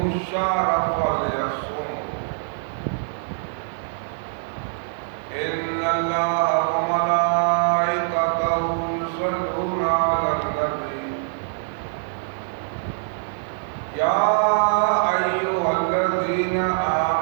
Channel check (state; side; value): silent; left; 60 dB below the other